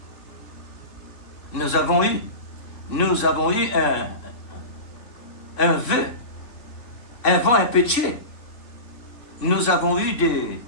Nous avons eu un vœu, un vent impétueux. Nous avons eu des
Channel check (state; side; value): late; right; 3.7 ms